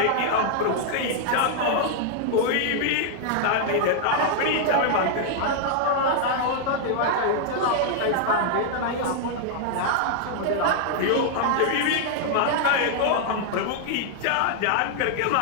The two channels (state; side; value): different; both; correlation 0.00